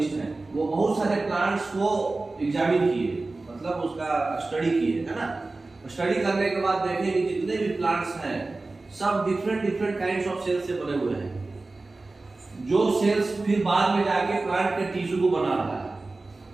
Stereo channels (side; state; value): left; quieter; 3.3 dB